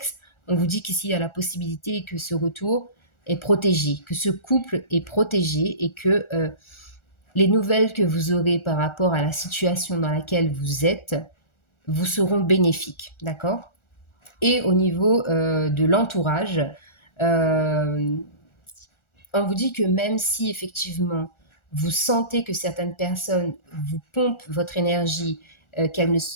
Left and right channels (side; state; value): right; late; 1.4 ms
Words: on vous dit qu'ici il y a la possibilité que ce retour est protégé, que ce couple est protégé et que les nouvelles que vous aurez par rapport à la situation dans laquelle vous êtes vous seront bénéfiques, d'accord? Et au niveau de l'entourage, euh, on vous dit que même si effectivement vous sentez que certaines personnes vous pompent votre énergie,